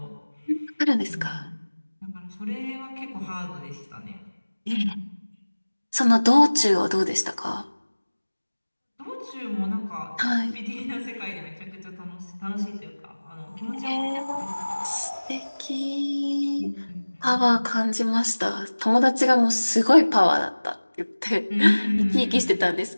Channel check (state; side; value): inverted; both; correlation -1.00